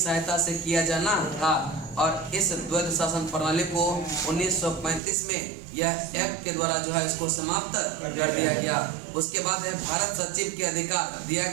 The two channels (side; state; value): left; drops out; at 5.0 s